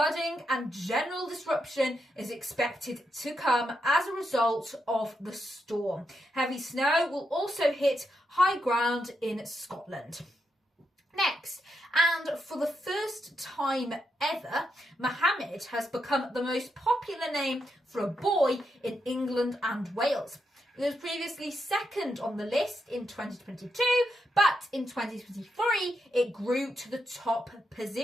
and general disruption is expected to come as a result of the storm. Heavy snow will also hit high ground in Scotland. Next, and for the first time ever, Mohammed has become the most popular name for a boy in England and Wales. It was previously second on the list in 2022, but in 2023 it grew to the top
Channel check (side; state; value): both; normal; correlation 0.83